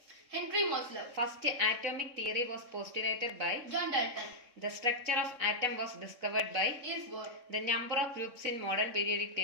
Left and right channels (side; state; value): left; late; 3.6 ms